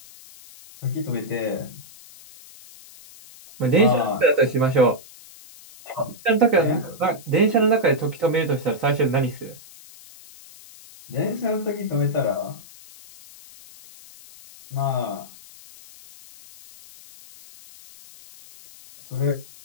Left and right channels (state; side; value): noise; left; hiss, 21 dB below the sound